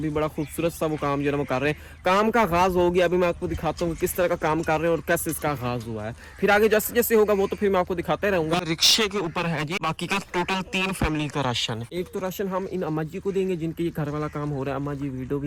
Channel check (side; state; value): both; identical; correlation 1.00